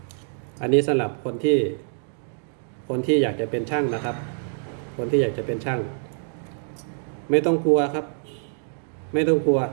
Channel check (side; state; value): left; silent; digital silence